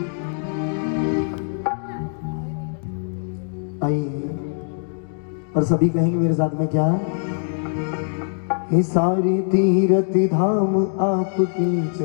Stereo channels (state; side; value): silent; right; digital silence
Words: आइए और सभी कहेंगे मेरे साथ में क्या। हे सारे तीर्थ धाम आपके